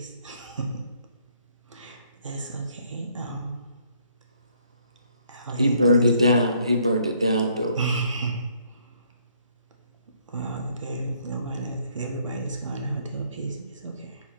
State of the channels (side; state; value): both; inverted; correlation -0.66